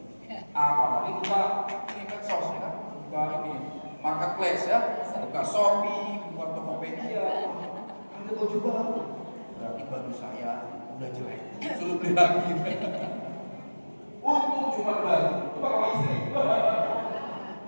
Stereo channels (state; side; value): inverted; both; correlation -1.00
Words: Apalagi buka ini medsos ya kan, buka ini marketplace ya, buka Shopee, buka Tokopedia, ada baju baru, berarti baju saya udah jelek, suruh beli lagi. Untung cuma baju, coba sama istri,